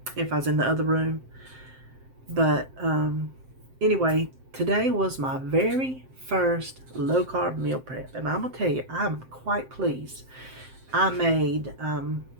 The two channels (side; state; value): left; late; 7.7 ms